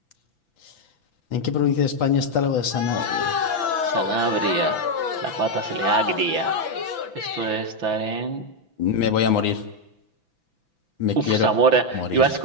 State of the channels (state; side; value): late; left; 6.0 ms